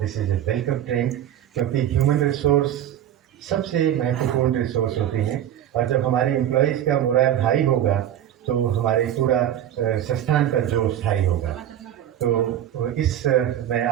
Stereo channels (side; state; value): left; quieter; 11.0 dB